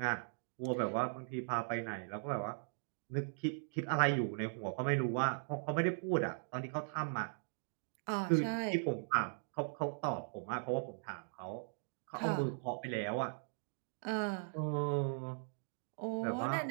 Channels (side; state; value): left; silent; digital silence